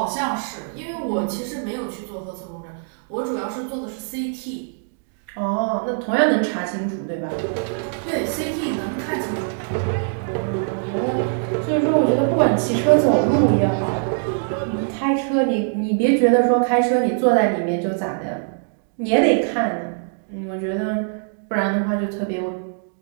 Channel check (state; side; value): silent; left; digital silence